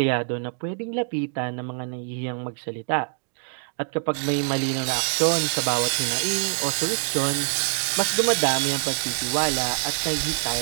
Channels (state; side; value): silent; left; digital silence